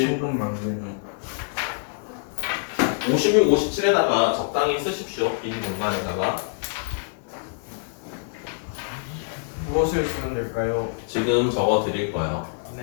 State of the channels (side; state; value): right; silent; digital silence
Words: 56, 57에다가 적당히 쓰십시오. 빈 공간에다가. 무엇을 쓰면 될까요? 지금 적어 드릴 거예요.